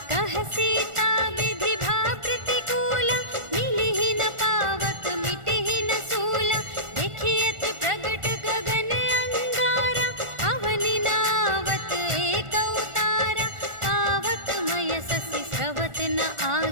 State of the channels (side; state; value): left; late; 1.4 ms